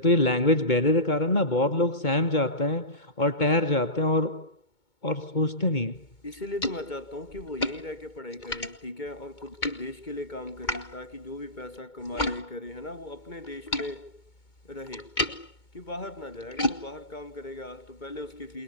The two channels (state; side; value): late; right; 2.2 ms